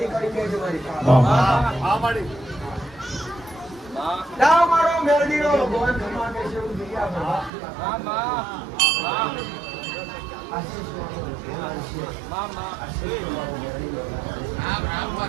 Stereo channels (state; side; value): drops out; left; at 7.5 s